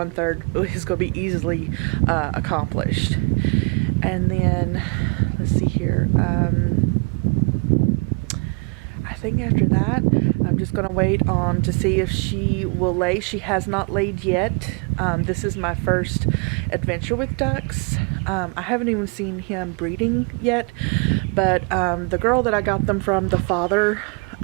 is going to be easily accomplished. And then let's see here. I think after that, I'm just going to wait on to see if she will lay. She has not laid yet. This is my first adventure with ducks. I haven't even seen him breeding yet, but the girl that I got them from, the father,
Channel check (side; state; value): left; quieter; 33.0 dB